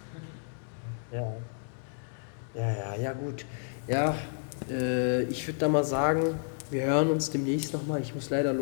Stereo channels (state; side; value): silent; right; 57 dB below the other